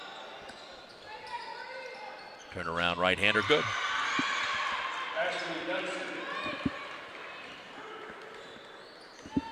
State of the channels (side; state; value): both; identical; correlation 1.00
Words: Turnaround right-hander, good.